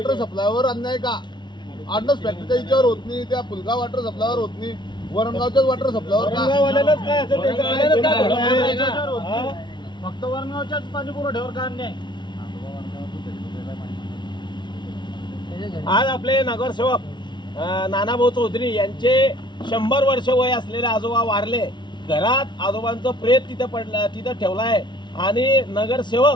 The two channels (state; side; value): late; right; 0.22 ms